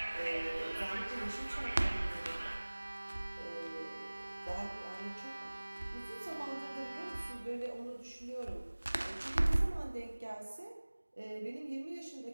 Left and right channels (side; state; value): both; inverted; correlation -1.00